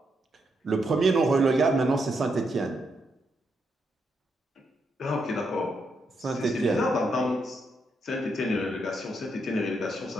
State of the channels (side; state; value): both; normal; correlation 0.80